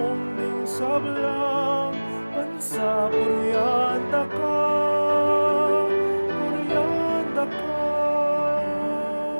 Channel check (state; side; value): inverted; both; correlation -1.00